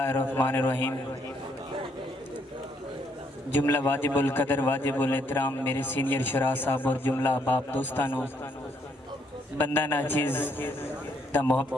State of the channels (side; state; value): both; normal; correlation 0.71